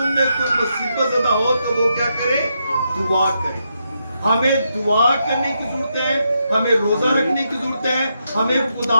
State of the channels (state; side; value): inverted; both; correlation -0.82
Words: में कोई मुसीबत ज़दा हो तो वो क्या करे? दुआ करे। हमें दुआ करने की जरूरत है, हमें रोजा रखने की जरूरत है, हमें